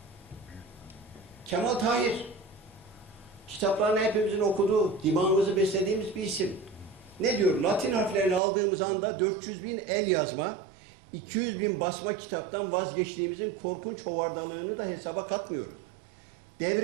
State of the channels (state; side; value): drops out; left; at 8.4 s